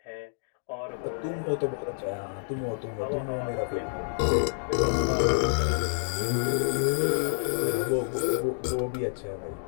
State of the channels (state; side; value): silent; right; digital silence